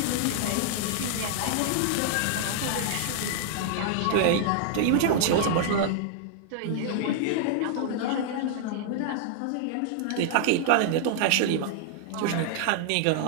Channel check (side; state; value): both; different; correlation -0.01